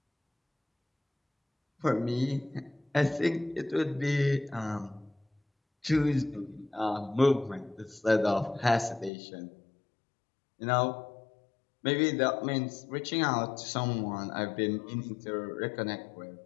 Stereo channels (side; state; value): right; drops out; at 9.1 s